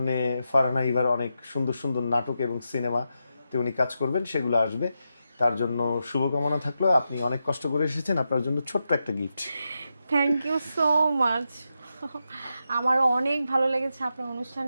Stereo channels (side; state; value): both; inverted; correlation -0.87